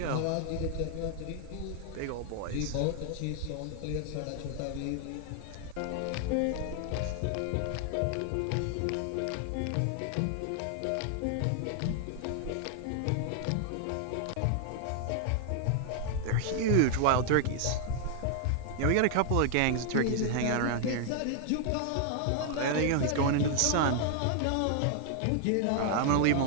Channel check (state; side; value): different; both; correlation 0.00